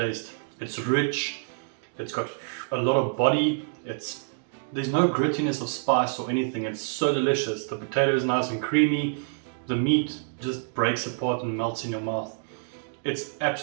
It's rich, it's got a lot of body, there's no grittiness of spice or anything. It's so delicious. The potato is nice and creamy, the meat just breaks apart and melts in your mouth. It's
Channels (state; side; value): silent; left; digital silence